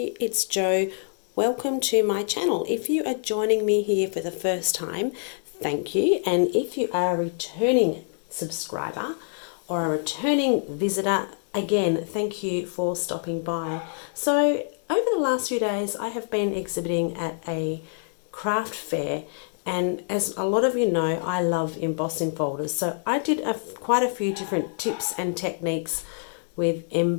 it's Jo. Welcome to my channel. If you are joining me here for the first time, thank you. And if you are a returning subscriber or a returning visitor, again, thank you for stopping by. So over the last few days, I have been exhibiting at a craft fair, and as a lot of you know, I love embossing folders. So I did quite a few different tips and techniques with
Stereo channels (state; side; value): silent; right; digital silence